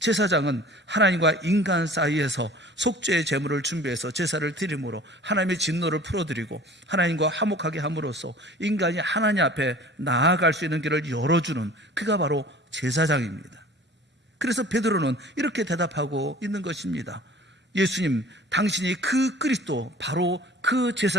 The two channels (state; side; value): normal; both; correlation 0.45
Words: 제사장은 하나님과 인간 사이에서 속죄의 제물을 준비해서 제사를 드림으로 하나님의 진노를 풀어드리고 하나님과 화목하게 함으로써 인간이 하나님 앞에 나아갈 수 있는 길을 열어주는 그가 바로 제사장입니다. 그래서 베드로는 이렇게 대답하고 있는 것입니다. 예수님, 당신이 그 그리스도, 바로 그